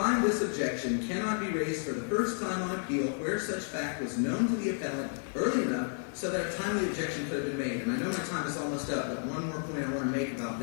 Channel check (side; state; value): right; silent; 57 dB below the other